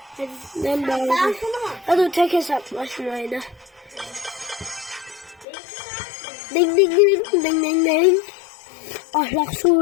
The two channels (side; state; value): right; drops out; at 5.5 s